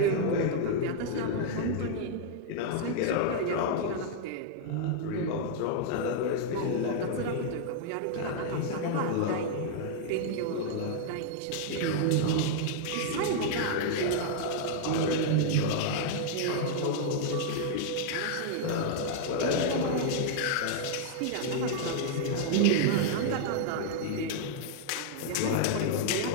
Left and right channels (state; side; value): different; both; correlation -0.01